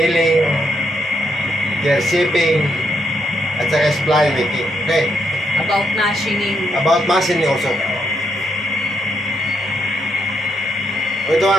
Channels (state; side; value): normal; both; correlation 0.77